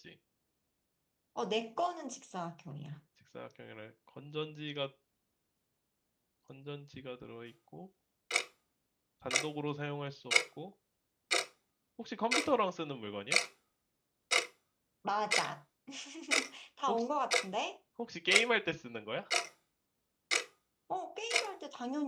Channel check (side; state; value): both; identical; correlation 1.00